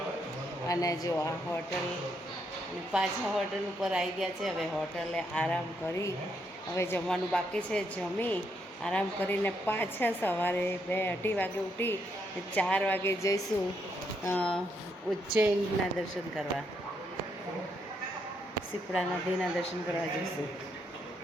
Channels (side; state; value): both; normal; correlation 0.76